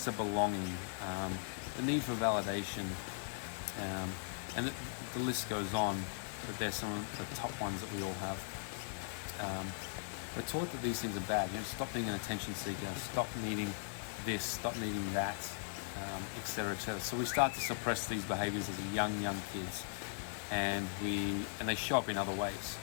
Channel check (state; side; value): silent; right; 52 dB below the other